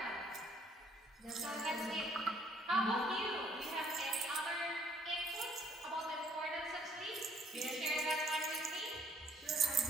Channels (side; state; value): both; normal; correlation 0.62